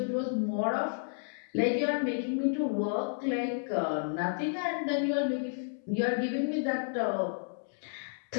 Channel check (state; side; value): silent; right; 57 dB below the other